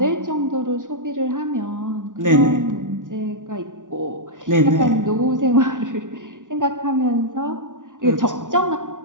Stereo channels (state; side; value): late; left; 0.87 ms